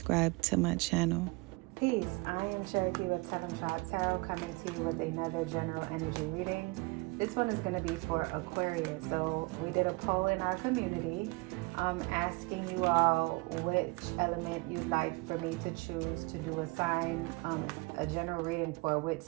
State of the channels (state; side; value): quieter; left; 26.6 dB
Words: to my channel. Peace, I am Cherokee with Tellemtribe Tarot, coming to you with another general energy reading. This one is going to be for Aquarius. So we did a poll in our community asking you all which element you'd like for me to choose to do a sign, a general reading for which